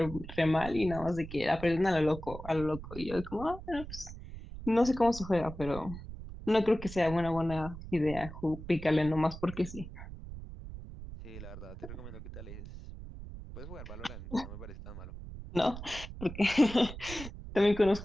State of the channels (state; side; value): noise; right; rumble, 11 dB below the sound